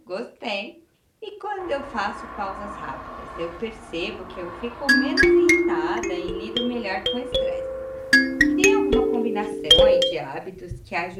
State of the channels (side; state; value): both; identical; correlation 1.00